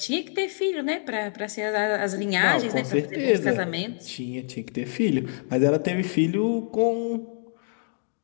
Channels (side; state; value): right; silent; 56 dB below the other